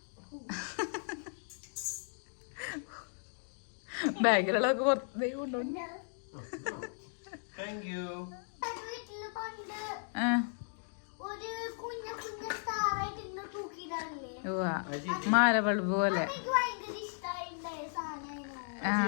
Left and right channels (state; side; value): silent; right; digital silence